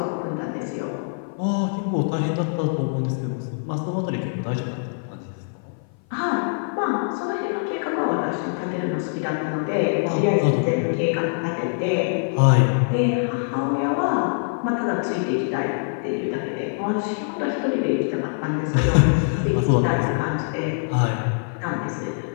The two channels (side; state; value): right; silent; 57 dB below the other